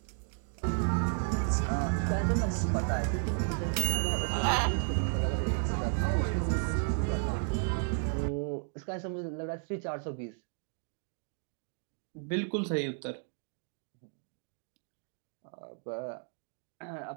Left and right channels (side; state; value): left; silent; 56 dB below the other